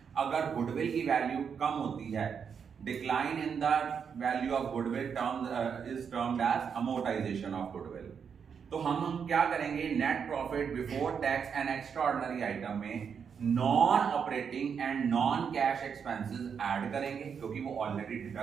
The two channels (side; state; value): left; quieter; 6.8 dB